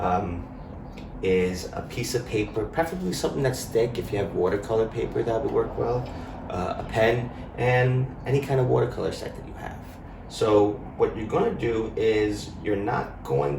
um, is a piece of paper, preferably something that's thick. If you have watercolor paper, that would work well, a pen, and any kind of watercolor set that you have. So what you're going to do is you're not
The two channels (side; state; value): both; identical; correlation 1.00